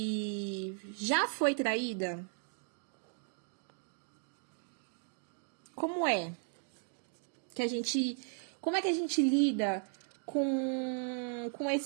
já foi traída? Como é como é que a gente lida com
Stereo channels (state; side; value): silent; left; 54 dB below the other